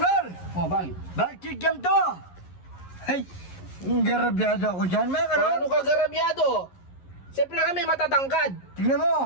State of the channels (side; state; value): right; late; 11 ms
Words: Oh, bakit? Bakit kikiam to? Ay, garabyado ako dyan, mga kanor. Ano ka garabyado? Siyempre kami matatangkad. Tingnan